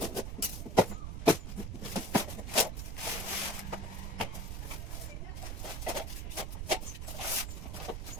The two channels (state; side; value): noise; right; rumble, 4 dB below the sound